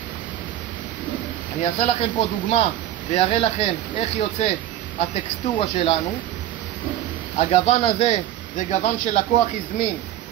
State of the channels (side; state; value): left; quieter; 12.7 dB